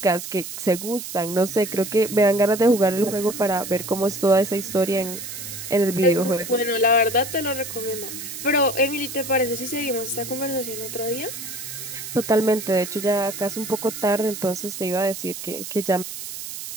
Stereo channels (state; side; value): noise; right; hiss, 9 dB below the sound